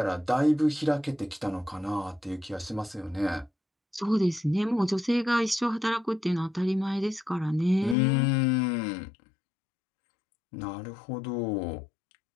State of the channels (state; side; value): drops out; right; at 8.0 s